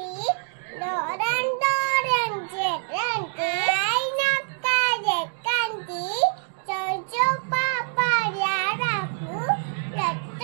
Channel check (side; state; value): left; silent; 62 dB below the other